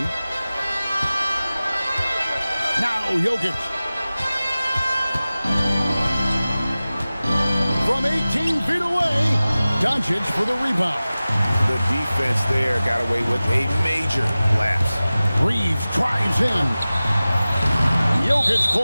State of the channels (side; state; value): both; inverted; correlation -0.97